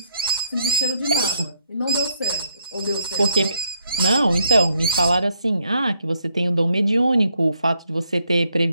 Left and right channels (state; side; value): inverted; both; correlation -0.73